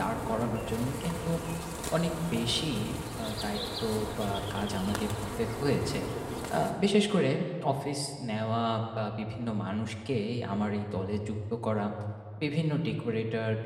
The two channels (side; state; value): both; identical; correlation 1.00